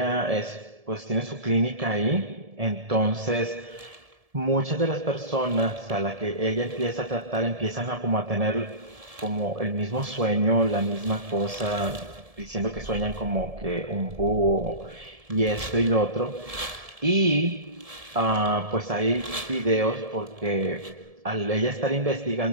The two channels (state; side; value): late; left; 1.7 ms